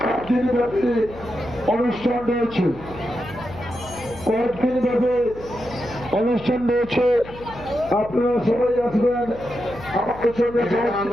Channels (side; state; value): left; noise; hum, 16 dB below the sound